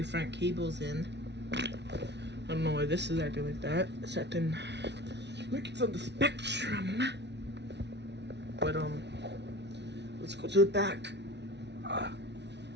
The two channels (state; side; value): late; left; 0.50 ms